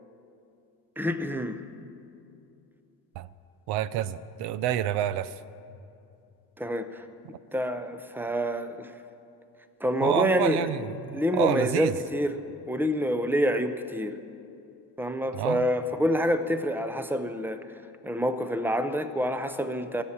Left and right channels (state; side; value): normal; both; correlation 0.60